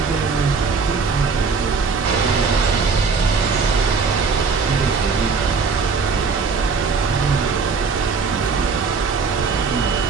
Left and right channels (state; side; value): quieter; left; 4.9 dB